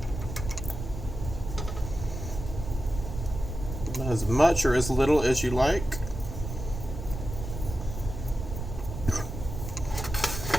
as much or as little as you like.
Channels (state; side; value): noise; right; rumble, 7 dB below the sound